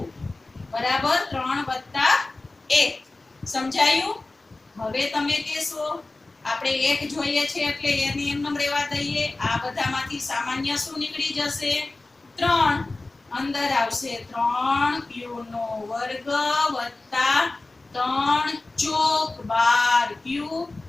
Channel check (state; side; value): quieter; right; 3.2 dB